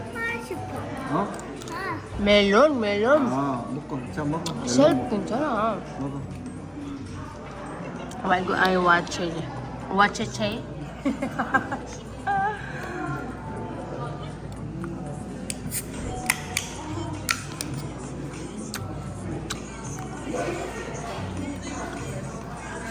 싶어. 어? 멜론. 아 먹고 자 먹어 멜론 셀프 먹어. 괜찮아. 먹어 말고 아이 와체체.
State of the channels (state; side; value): identical; both; correlation 1.00